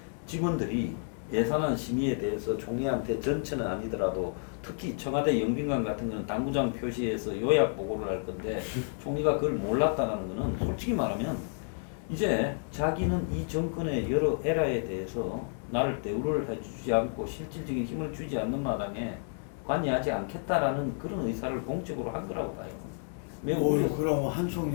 직원들이 예산안 심의에 대해서 총리한테 전체는 아니더라도 특히 청와대 영빈관 같은 거는 당구장 표시해서 요약 보고를 할 건데 총리가 그걸 몰랐다는 거는 솔직히 말하면 이제 자기는 이 정권의 여러 에라에 대해서 나를 대우를 해주지 않고 실질적인 힘을 주지 않는 마당에 관여하지 않겠다라는 그런 의사를 공적으로 한 거라고 봐요. 매우 오, 우려. 그럼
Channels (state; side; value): silent; right; 56 dB below the other